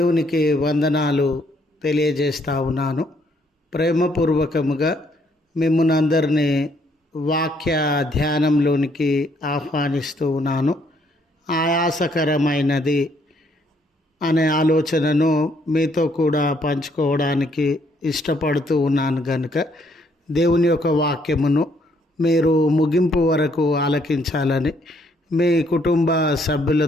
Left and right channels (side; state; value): both; normal; correlation 0.69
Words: వందనాలు తెలియజేస్తా ఉన్నాను. ప్రేమపూర్వకముగా మిమ్మల్ని అందరినీ వాక్య ధ్యానంలోనికి ఆహ్వానిస్తూ ఉన్నాను. ఆయాసకరమైనది అనే ఆలోచనను మీతో కూడా పంచుకోవడానికి ఇష్టపడుతూ ఉన్నాను కనుక దేవుని యొక్క వాక్యమును మీరు ముగింపు వరకు ఆలకించాలని మీ కుటుంబ